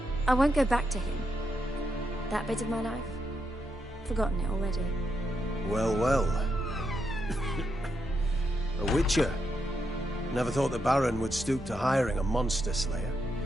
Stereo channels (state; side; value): normal; both; correlation 0.82